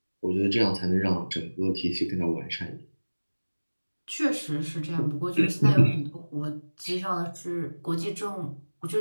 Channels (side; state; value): both; inverted; correlation -1.00